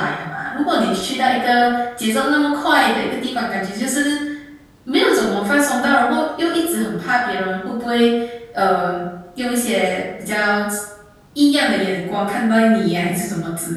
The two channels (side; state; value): both; identical; correlation 1.00